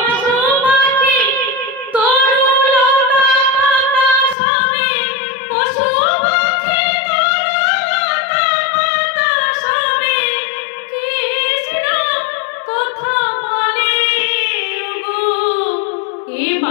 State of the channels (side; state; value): right; drops out; at 4.4 s